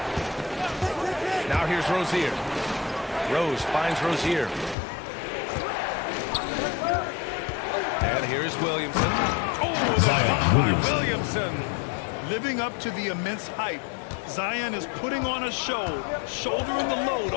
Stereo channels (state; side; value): drops out; right; at 4.8 s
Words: Now here's Rozier. Rose finds Rozier. And here's Williamson. Oh, Zion Williamson. Living up to the immense hype, Zion is putting on a show, shouldering the load